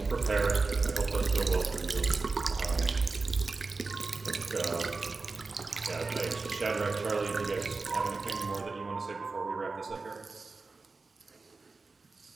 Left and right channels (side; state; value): left; quieter; 3.9 dB